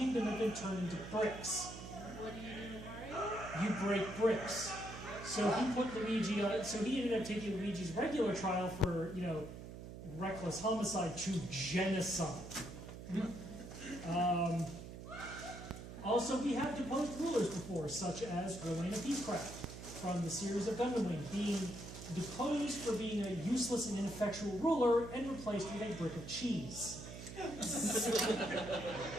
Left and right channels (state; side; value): noise; right; hum, 11 dB below the sound